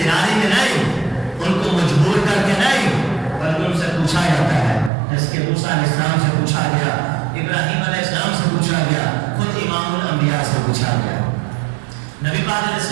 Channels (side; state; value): left; drops out; at 4.9 s